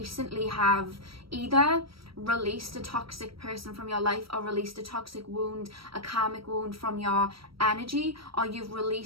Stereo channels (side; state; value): left; late; 0.75 ms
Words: have either released a toxic person from your life, or released a toxic wound, a karmic wound from your energy, or you've